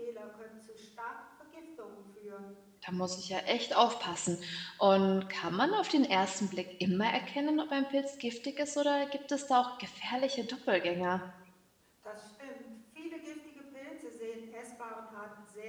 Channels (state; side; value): identical; both; correlation 1.00